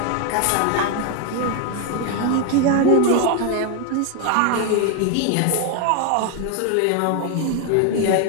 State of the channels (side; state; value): both; different; correlation 0.01